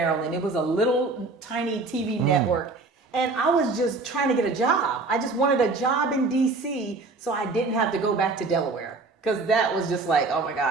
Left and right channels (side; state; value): left; quieter; 3.7 dB